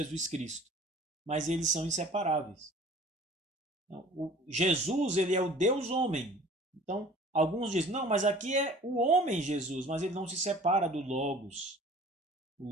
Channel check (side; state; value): both; normal; correlation 0.47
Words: Cristo. Mas eles são inseparáveis. O Jesus, ele é o Deus homem. Então, alguns dizem, não, mas aqui é o homem Jesus, mas ele não se separa do Logos. O